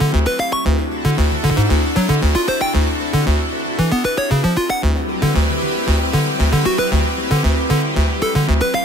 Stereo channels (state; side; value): normal; both; correlation 0.67